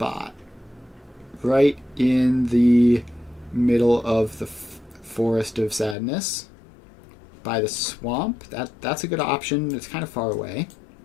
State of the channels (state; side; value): drops out; right; at 6.0 s